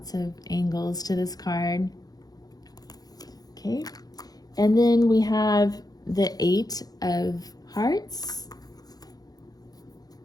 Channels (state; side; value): late; right; 0.19 ms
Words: of angles to this card. Okay. And then we have the Eight of Hearts,